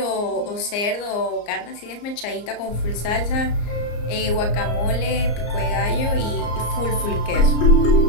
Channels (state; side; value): late; right; 34 ms